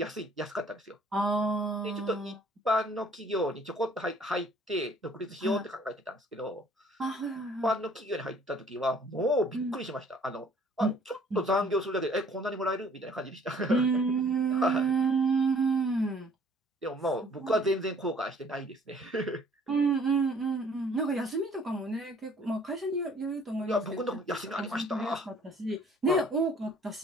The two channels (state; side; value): normal; both; correlation 0.57